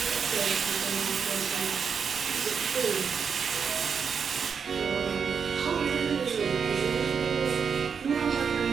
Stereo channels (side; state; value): left; quieter; 6.4 dB